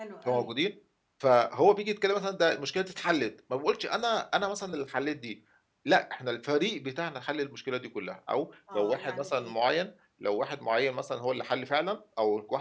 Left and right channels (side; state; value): both; identical; correlation 1.00